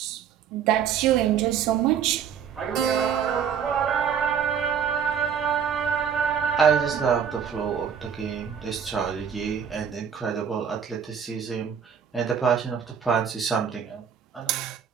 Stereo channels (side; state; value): left; quieter; 7.6 dB